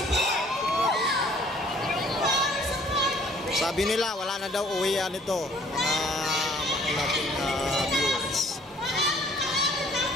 Sabi nila wala na daw uwian ito mga nating viewers.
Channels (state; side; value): normal; both; correlation 0.57